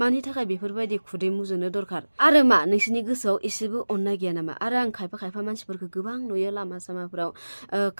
थाखाय बेफोरबायदि खुदै मुजुनो दरखार? आरो मा नोंसिनि गोसोआव एसेबो अननाय गैया नामा? आरो आं खायफा मानसिफोरखौ गोबां नुयो लामा सामाफ्राव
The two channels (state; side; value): inverted; both; correlation -1.00